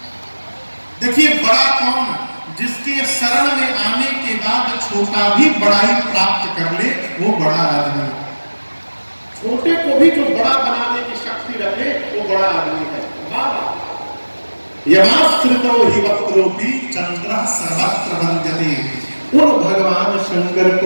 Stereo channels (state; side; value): inverted; both; correlation -1.00